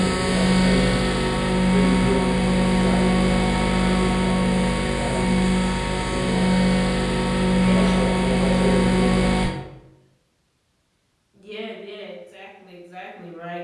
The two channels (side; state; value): both; identical; correlation 1.00